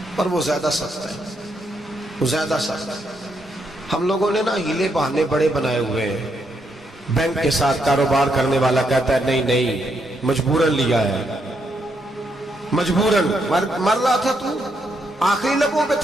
پر وہ زیادہ سخت ہے، وہ زیادہ سخت ہے۔ ہم لوگوں نے نا ہیلے بہانے بڑے بنائے ہوئے ہیں۔ بینک کے ساتھ کاروبار کرنے والا کہتا ہے نہیں نہیں، مجبوراً لیا ہے، مجبوراً مر رہا تھا تو، آخری لبوں پہ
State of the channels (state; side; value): normal; both; correlation 0.78